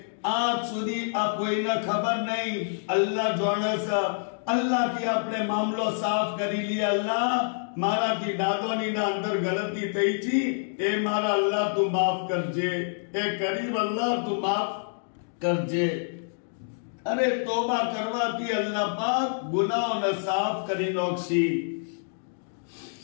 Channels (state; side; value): silent; right; digital silence